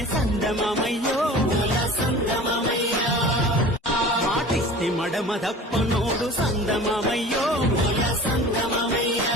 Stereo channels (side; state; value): both; normal; correlation 0.40